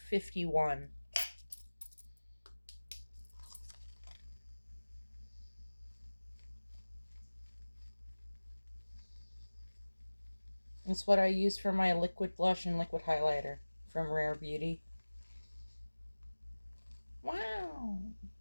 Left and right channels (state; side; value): inverted; both; correlation -1.00